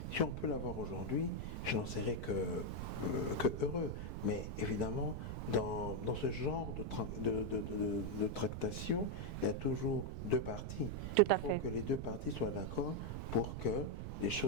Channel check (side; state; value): right; noise; rumble, 5 dB below the sound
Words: on peut l'avoir aujourd'hui, je n'en serais que heureux. Mais évidemment, dans ce genre de tractation, il y a toujours deux parties. Tout à fait. Il faut que les deux parties soient d'accord pour que les